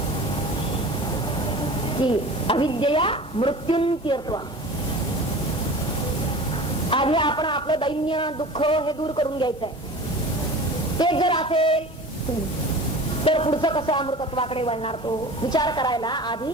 की अविद्यया मृत्युंत्यर्थवा. आधी आपण आपलं दैन्य दुःख हे दूर करून घ्यायचंय. ते जर असेल तर पुढचं कसं अमृतत्वाकडे वळणार तो विचार करायला आधी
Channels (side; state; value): both; normal; correlation 0.37